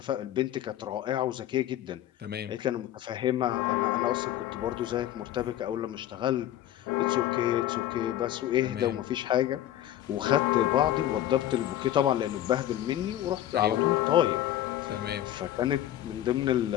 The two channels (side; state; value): right; quieter; 12.6 dB